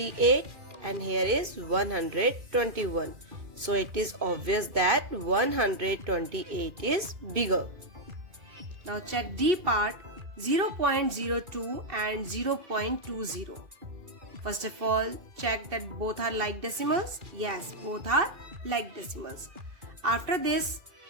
and here is 121. So it is obvious that 128 is bigger. Now check D part, 0.02 and 0.20. First of all, check that both are like decimals. Yes, both are like decimals. After this,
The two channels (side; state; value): left; late; 2.5 ms